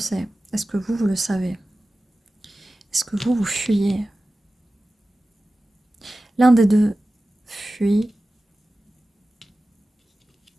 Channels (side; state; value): both; normal; correlation 0.96